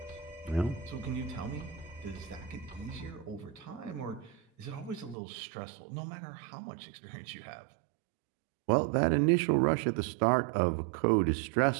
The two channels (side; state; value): left; drops out; at 5.2 s